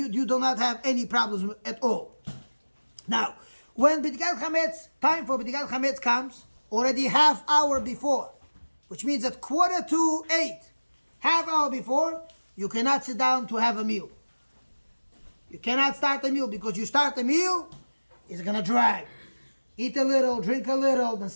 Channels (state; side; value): inverted; both; correlation -1.00